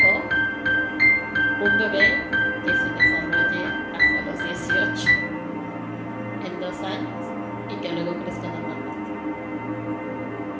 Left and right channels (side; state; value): both; identical; correlation 1.00